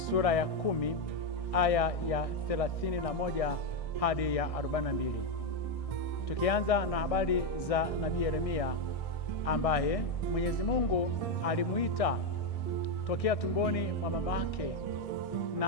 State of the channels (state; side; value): late; right; 1.6 ms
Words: ya 10 aya ya 31 hadi ya 42. Tukianza na habari za Nabii Yeremia ambaye Mwenyezi Mungu alimuita tokea tumboni mwa mama yake